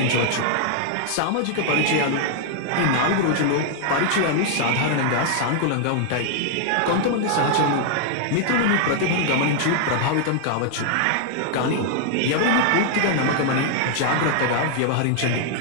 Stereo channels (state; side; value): different; both; correlation 0.00